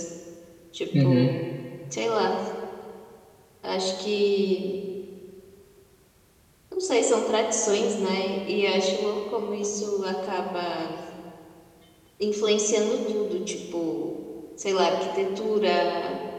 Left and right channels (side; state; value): both; identical; correlation 1.00